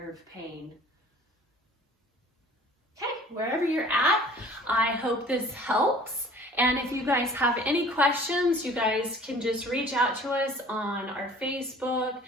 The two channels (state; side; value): normal; both; correlation 0.49